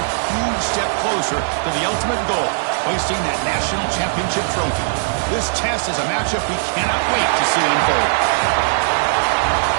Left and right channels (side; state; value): left; silent; digital silence